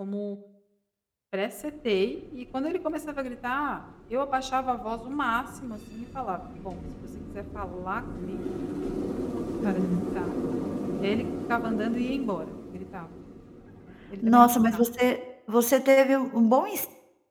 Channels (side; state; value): both; identical; correlation 1.00